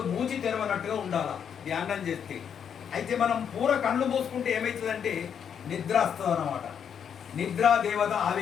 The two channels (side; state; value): right; quieter; 7.9 dB